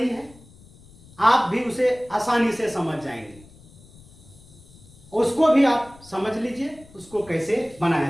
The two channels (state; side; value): noise; left; rumble, 24 dB below the sound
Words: है, आप भी उसे आसानी से समझ जाएंगे। उसको भी आप समझ लीजिए उसको कैसे बनाया